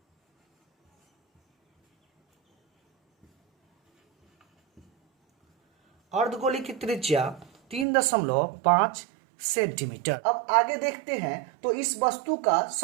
अर्धगोले की त्रिज्या 3.5 सेंटीमीटर। अब आगे देखते हैं। तो इस वस्तु का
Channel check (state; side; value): drops out; left; at 7.9 s